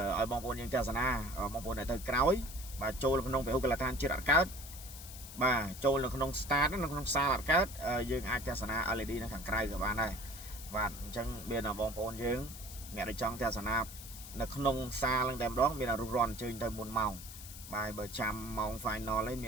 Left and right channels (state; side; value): noise; left; hiss, 13 dB below the sound